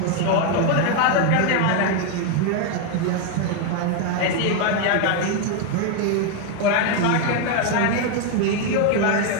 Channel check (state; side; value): different; both; correlation 0.01